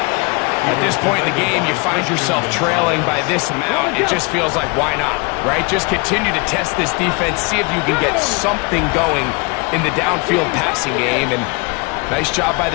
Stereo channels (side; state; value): right; quieter; 29.3 dB